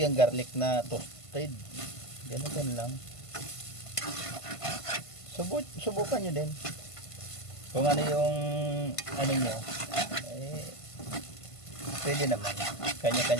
garlic na toasted. Ganun lang. Subukan nyo din. Kung ano yung ano nyo, eh, pwede naman.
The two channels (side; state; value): right; late; 1.5 ms